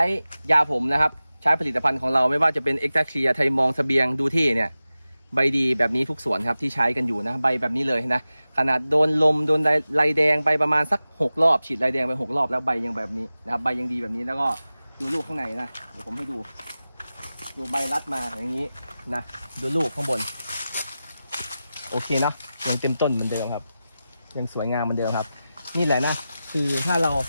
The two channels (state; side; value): inverted; both; correlation -0.94